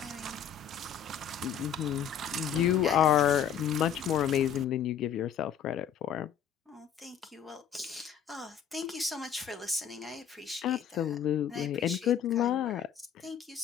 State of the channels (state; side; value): quieter; right; 8.5 dB